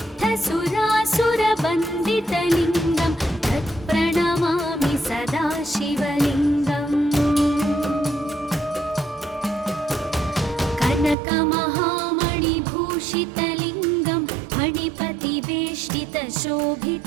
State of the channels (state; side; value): drops out; left; at 11.2 s